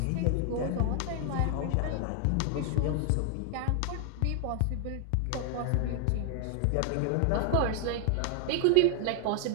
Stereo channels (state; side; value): different; both; correlation 0.00